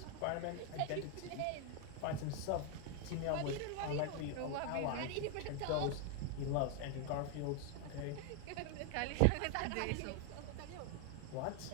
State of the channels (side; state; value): both; different; correlation 0.01